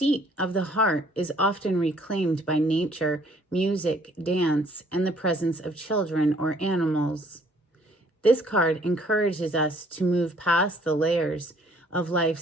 of the heart is often reclaimed by nature, music, dance, and the presence of children or animals. This card encourages us to move past the layers of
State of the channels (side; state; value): both; normal; correlation 0.61